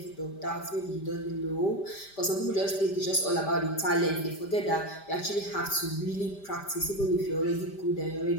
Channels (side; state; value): right; late; 5.1 ms